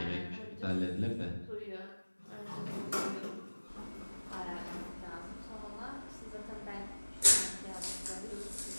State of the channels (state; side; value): inverted; both; correlation -1.00